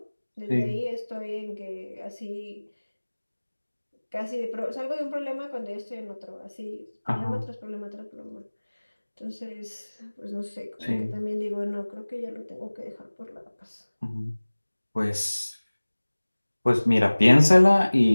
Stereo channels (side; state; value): both; inverted; correlation -1.00